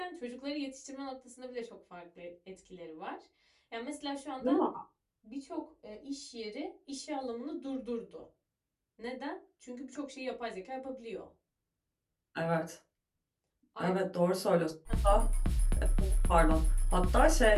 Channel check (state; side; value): identical; both; correlation 1.00